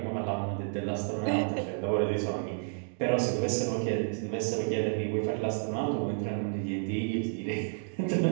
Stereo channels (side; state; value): left; silent; digital silence